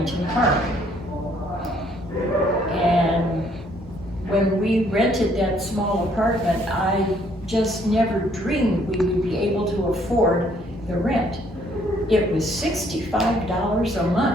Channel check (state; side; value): normal; both; correlation 0.65